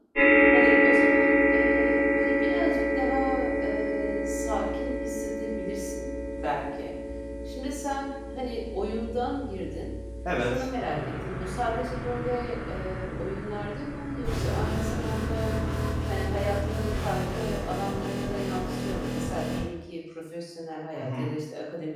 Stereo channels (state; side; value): identical; both; correlation 1.00